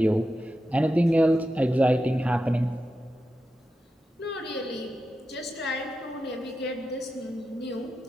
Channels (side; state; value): both; normal; correlation 0.90